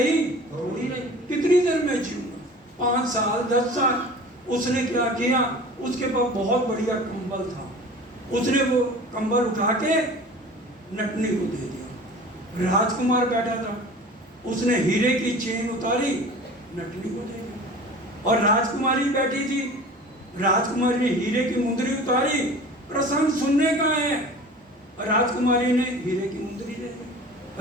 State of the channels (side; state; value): both; normal; correlation 0.40